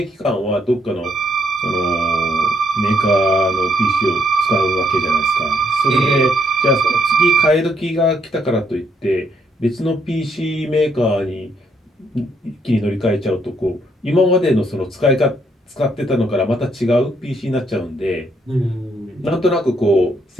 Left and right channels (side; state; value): both; normal; correlation 0.72